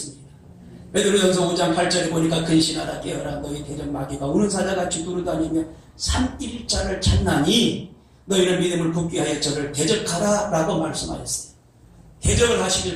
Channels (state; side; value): identical; both; correlation 1.00